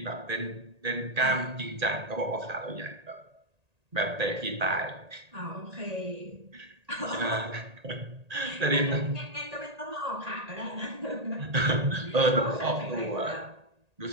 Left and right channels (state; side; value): late; left; 1.8 ms